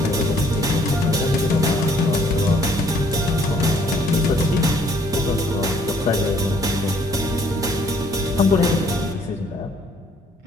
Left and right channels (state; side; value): normal; both; correlation 0.62